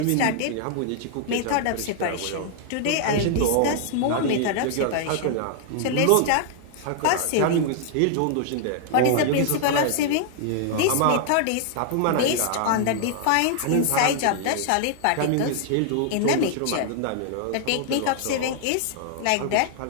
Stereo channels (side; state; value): both; different; correlation 0.00